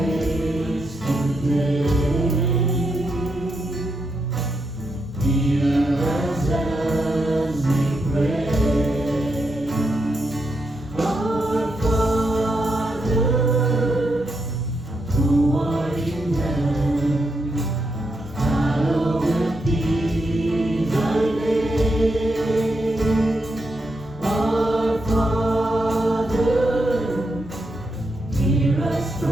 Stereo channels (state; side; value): normal; both; correlation 0.83